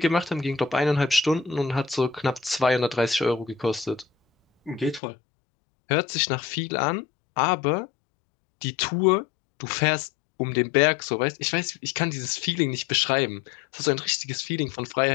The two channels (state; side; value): drops out; right; at 5.0 s